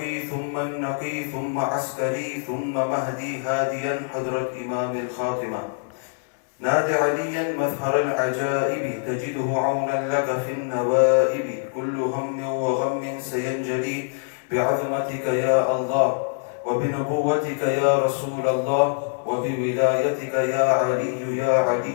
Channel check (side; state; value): right; silent; 62 dB below the other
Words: ثم النقي ثم عسكري ثم مهدي هاديا حضرة إمام الخاتمة. نادى عليا مظهر العجائب، تجده عونا لك في النوائب. كل هم وغم سينجلي بعظمتك يا الله، وبنبوتك يا رسول الله، وبولايتك يا علي يا